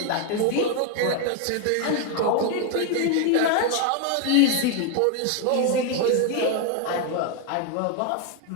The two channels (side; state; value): both; different; correlation 0.01